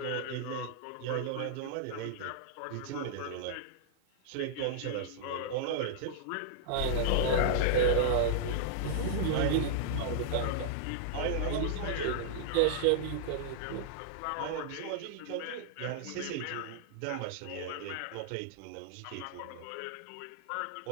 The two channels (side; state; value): both; different; correlation -0.01